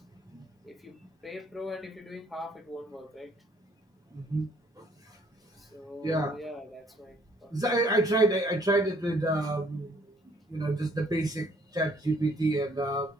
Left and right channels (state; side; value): normal; both; correlation 0.63